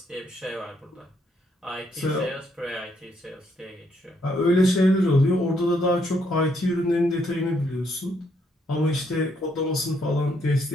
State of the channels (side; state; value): both; normal; correlation 0.73